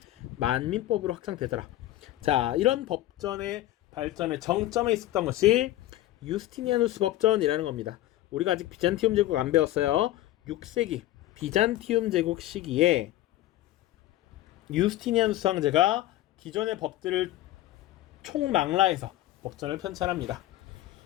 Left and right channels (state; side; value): quieter; right; 15.0 dB